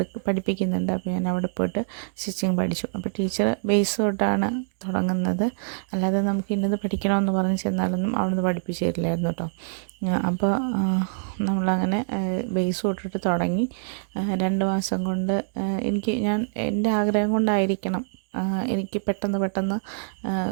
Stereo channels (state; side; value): silent; left; digital silence